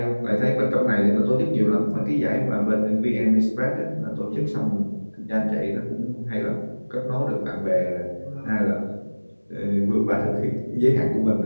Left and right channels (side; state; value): both; inverted; correlation -1.00